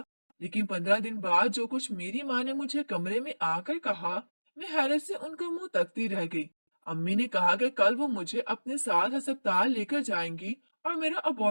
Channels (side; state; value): both; inverted; correlation -1.00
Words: लेकिन 15 दिन बाद जो कुछ मेरी माँ ने मुझे कमरे में आकर कहा, मैं हैरत से उनका मुंह तकती रह गई। अम्मी ने कहा कि कल वो मुझे अपने साथ अस्पताल लेकर जाएंगी और मेरा